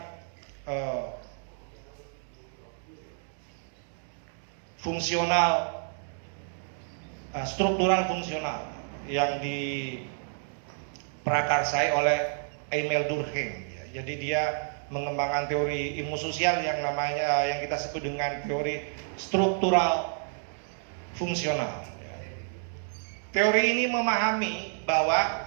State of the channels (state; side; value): silent; left; 58 dB below the other